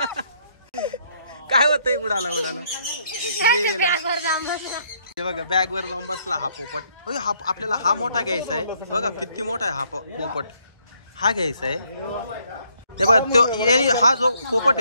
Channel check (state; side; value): inverted; both; correlation -0.69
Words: काय होतंय. उडाला हे बघा बॅग वर जाऊन बसला हा पोपट. हा आपल्याला हा मोठा घ्यायचा आहे बघा, किती मोठा आहे हा पोपट. हा घ्यायचा आहे. हे बघा तो हा जो पोपट